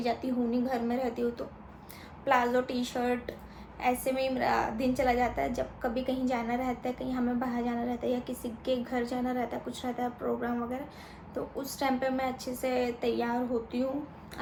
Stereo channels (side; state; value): both; identical; correlation 1.00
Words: जाती हूँ नहीं, घर में रहती हूँ तो प्लाजो टी शर्ट ऐसे में ही मेरा दिन चला जाता है। जब कभी कहीं जाना रहता है, कहीं हमें बाहर जाना रहता है या किसी के घर जाना रहता है, कुछ रहता है प्रोग्राम वगैरह, तो उस टाइम पे मैं अच्छे से तैयार होती हूँ।